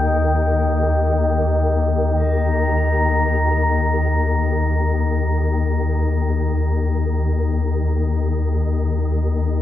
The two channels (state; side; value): normal; both; correlation 0.88